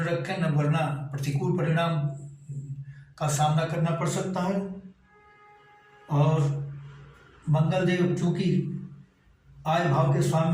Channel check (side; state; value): both; identical; correlation 1.00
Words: रखें, न वरना प्रतिकूल परिणाम का सामना करना पड़ सकता है। और मंगल देव चूंकि आय भाव के